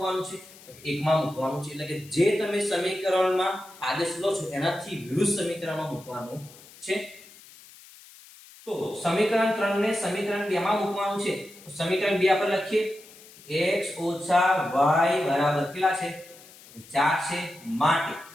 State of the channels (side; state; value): left; noise; hiss, 21 dB below the sound